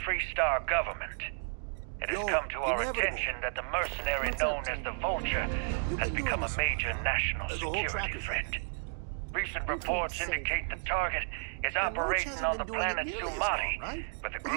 government. It has come to our attention that the mercenary known as the Vulture has become a major national security threat. Recent reports indicate the target is operating on the planet Sumati with a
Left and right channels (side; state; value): left; silent; digital silence